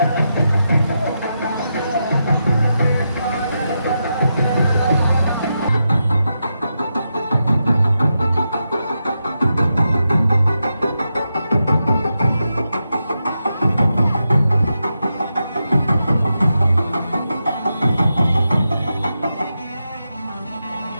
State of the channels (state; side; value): inverted; both; correlation -0.87